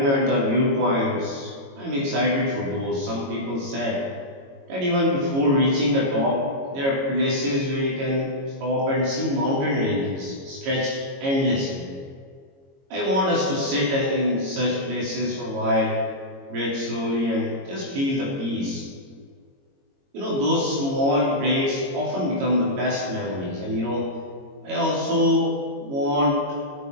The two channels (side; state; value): left; late; 22 ms